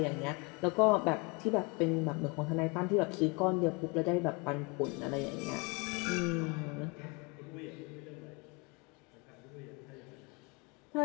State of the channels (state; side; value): quieter; right; 29.9 dB